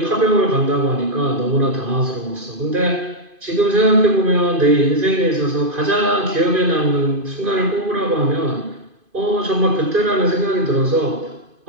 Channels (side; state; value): left; late; 2.5 ms